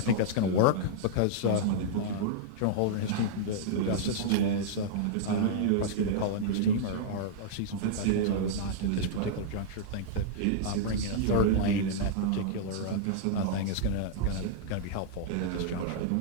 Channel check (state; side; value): different; both; correlation -0.02